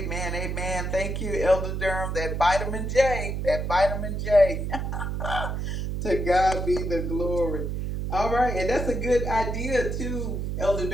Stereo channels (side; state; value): right; noise; hum, 2 dB below the sound